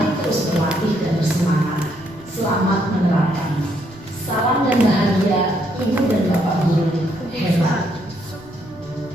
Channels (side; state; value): right; noise; rumble, 23 dB below the sound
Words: terus berlatih dan bersemangat. Selamat menerapkan. Salam dan bahagia Ibu dan Bapak Guru hebat.